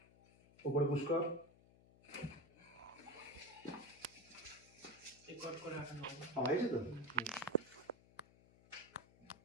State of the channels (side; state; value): left; noise; hum, 24 dB below the sound